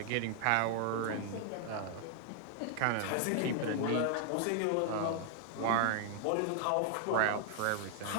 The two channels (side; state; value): both; different; correlation 0.00